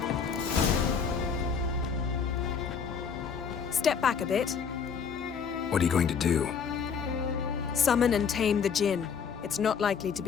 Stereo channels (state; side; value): quieter; right; 6.4 dB